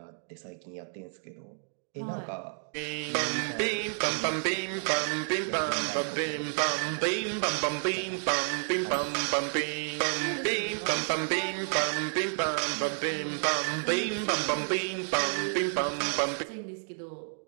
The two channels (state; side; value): silent; left; 58 dB below the other